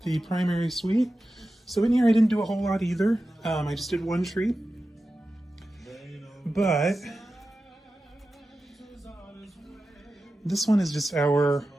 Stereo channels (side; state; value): both; normal; correlation 0.93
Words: the primary suite. So in here, I didn't do a whole lot either. I just did one tree. But this one is just our